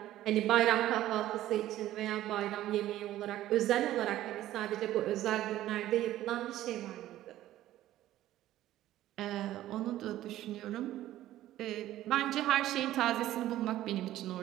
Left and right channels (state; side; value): quieter; left; 14.0 dB